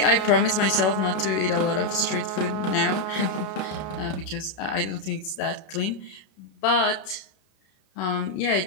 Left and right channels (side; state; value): right; late; 32 ms